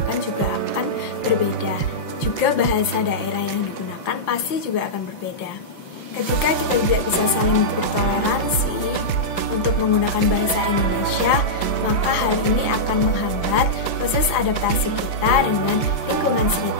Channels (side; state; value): right; late; 5.7 ms